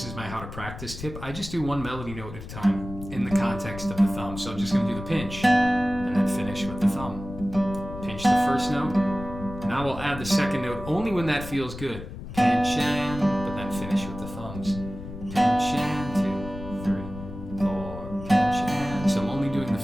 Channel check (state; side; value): noise; left; rumble, 11 dB below the sound